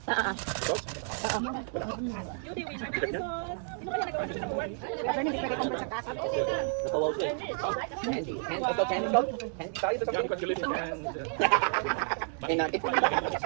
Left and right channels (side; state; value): left; silent; 57 dB below the other